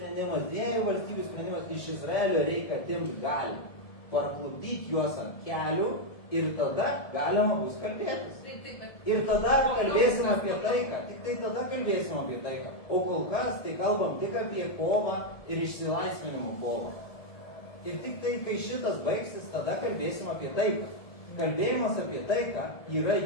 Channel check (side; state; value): right; late; 1.7 ms